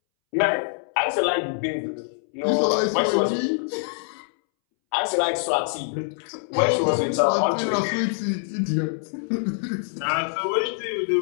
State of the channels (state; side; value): silent; right; 62 dB below the other